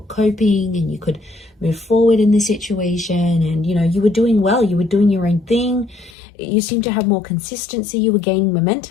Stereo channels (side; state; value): right; drops out; at 6.2 s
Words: coping and you could move forward in this situation and, you know, you were doing well, you were doing your own thing. You seem to have more consistency, you were gaining